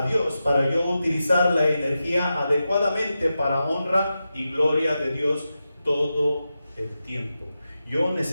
Dios para yo utilizar la energía adecuadamente para honra y gloria de Dios todo el tiempo. Yo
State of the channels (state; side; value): inverted; both; correlation -0.91